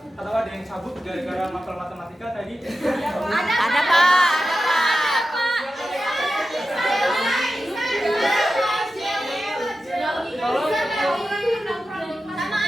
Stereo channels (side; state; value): both; normal; correlation 0.92